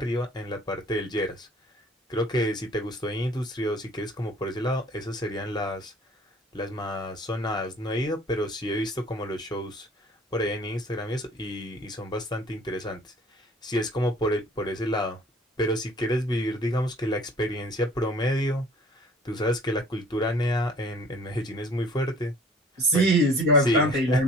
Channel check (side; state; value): both; normal; correlation 0.52